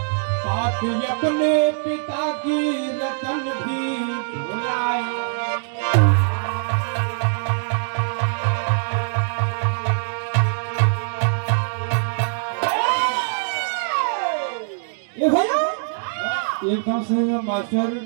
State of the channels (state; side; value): silent; left; digital silence